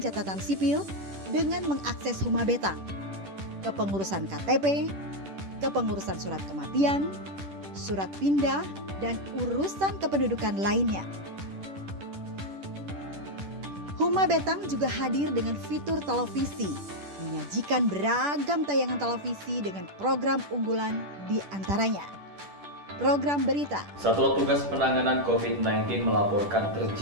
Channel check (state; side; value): late; left; 10 ms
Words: sipil dengan mengakses Huma Betang, kepengurusan KTP, kepengurusan surat kematian, surat pindah, dan urusan kependudukan lainnya. Huma Betang juga hadir dengan fitur televisi, menyajikan beragam tayangan televisi dengan program unggulan di antaranya program berita. Satuan Tugas Penanganan COVID-19 melaporkan